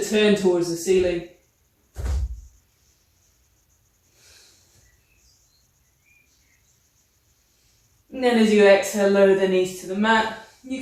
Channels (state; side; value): identical; both; correlation 1.00